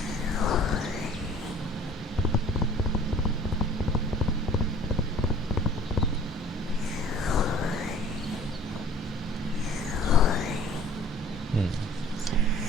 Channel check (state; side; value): normal; both; correlation 0.51